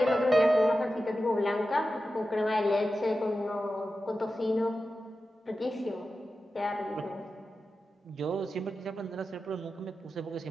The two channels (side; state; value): both; normal; correlation 0.92